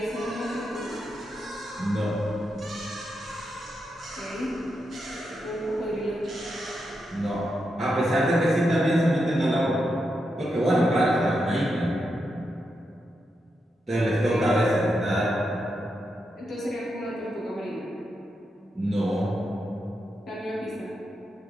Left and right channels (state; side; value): normal; both; correlation 0.85